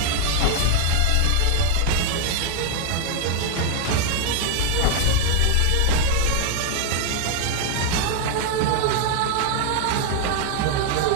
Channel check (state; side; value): different; both; correlation 0.00